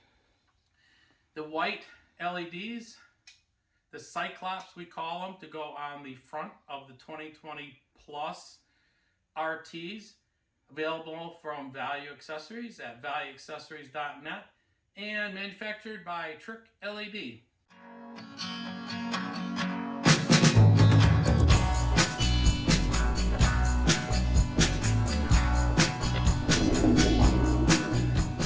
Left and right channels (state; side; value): identical; both; correlation 1.00